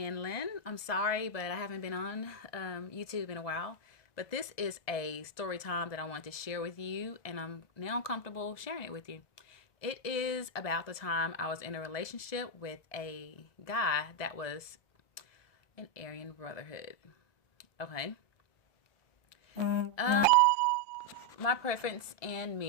I'm sorry, but I haven't been on YouTube in a while. But this is a story time that I wanted to share with you, and I'm now comfortable sharing it with you. It is about the time I was in a relationship with a guy that was an Aryan Brotherhood. Okay. Um, my preference in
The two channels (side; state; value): right; late; 1.7 ms